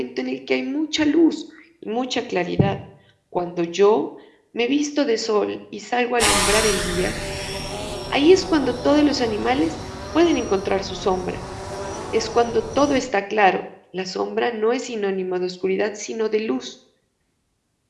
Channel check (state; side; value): identical; both; correlation 1.00